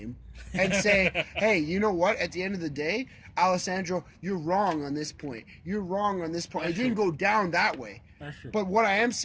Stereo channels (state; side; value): identical; both; correlation 1.00